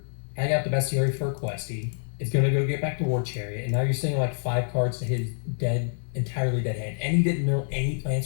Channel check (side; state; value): right; silent; 59 dB below the other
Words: Hang out the Bestiari for a Questy. It's going to go get back to War Chariot, and now you're seeing like 5 cards to his entirely dead hand. And he didn't mill any plans